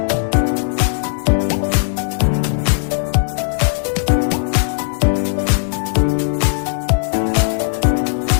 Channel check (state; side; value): silent; right; digital silence